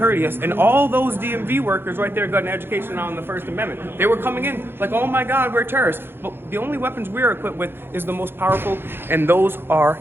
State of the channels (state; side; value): late; left; 0.10 ms